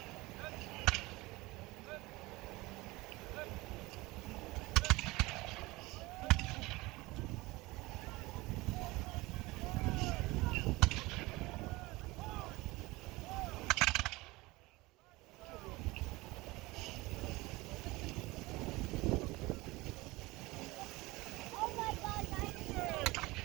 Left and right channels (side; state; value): left; quieter; 21.5 dB